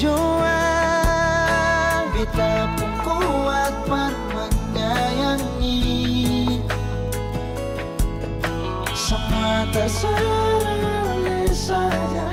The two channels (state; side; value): identical; both; correlation 1.00